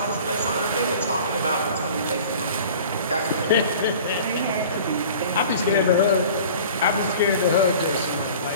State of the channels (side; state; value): both; inverted; correlation -0.44